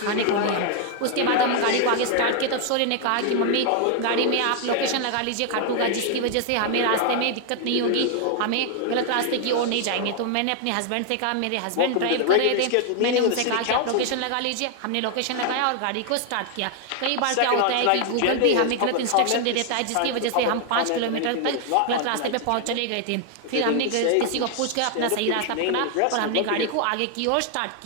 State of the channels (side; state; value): both; different; correlation 0.00